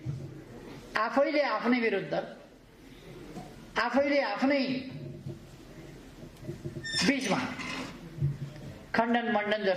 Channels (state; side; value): identical; both; correlation 1.00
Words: आफैले आफ्नै विरुद्ध, आफैले आफ्नै बीचमा खण्डन मण्डन